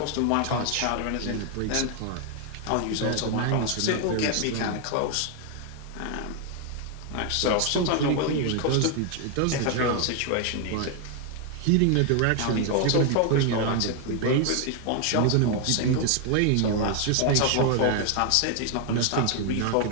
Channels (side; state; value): both; different; correlation 0.00